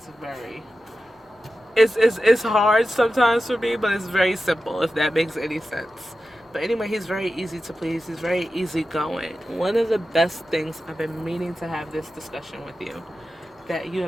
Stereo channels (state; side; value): normal; both; correlation 0.92